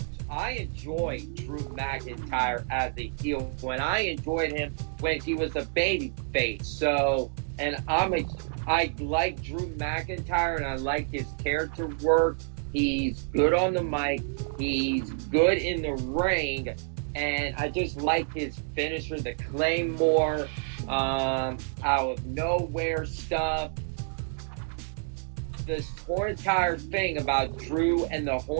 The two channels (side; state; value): left; silent; digital silence